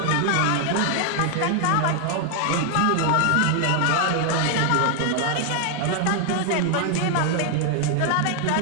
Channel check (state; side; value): different; both; correlation 0.00